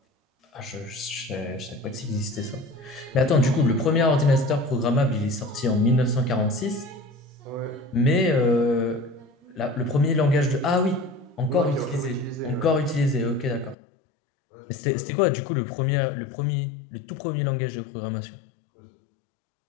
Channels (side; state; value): right; drops out; at 13.8 s